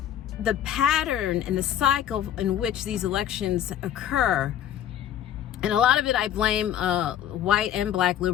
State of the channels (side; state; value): right; quieter; 10.5 dB